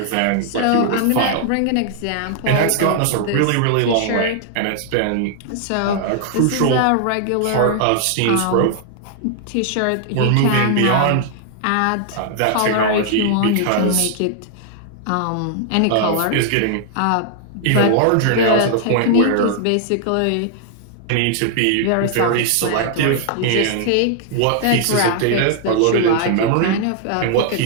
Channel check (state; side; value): different; both; correlation -0.01